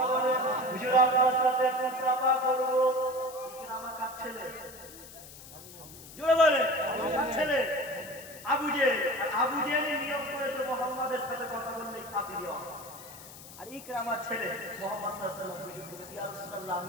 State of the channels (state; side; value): noise; left; hiss, 17 dB below the sound